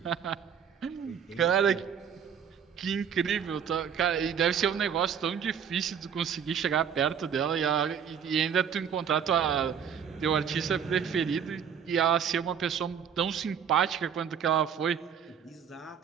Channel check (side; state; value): left; quieter; 7.7 dB